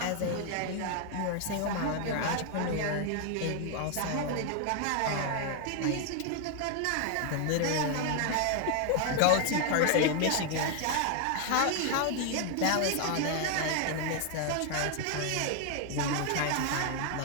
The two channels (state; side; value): different; both; correlation 0.00